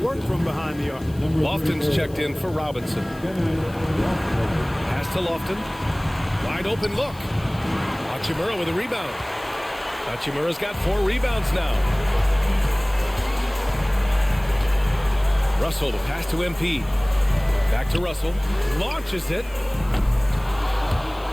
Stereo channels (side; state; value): left; noise; hiss, 24 dB below the sound